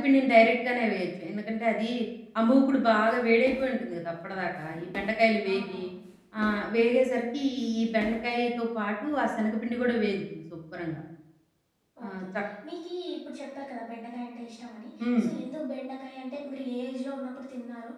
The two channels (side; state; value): both; identical; correlation 1.00